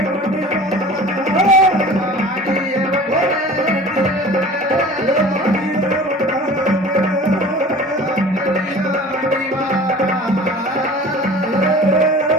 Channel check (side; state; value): both; normal; correlation 0.42